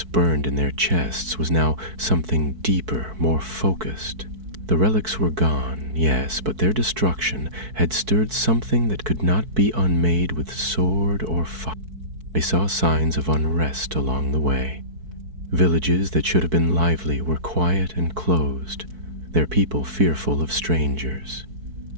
burned in their chests was now something deeper, more focused. The relics were gone, yes, but their destruction had stirred something that could not be unmade with sword or fire. They saw signs of unrest along the way. Villages that should have been lively were quiet and closed, their people fearful of strangers.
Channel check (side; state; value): left; late; 4.6 ms